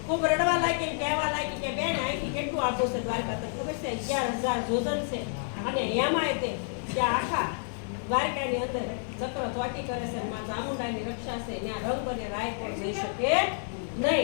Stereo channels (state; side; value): silent; right; digital silence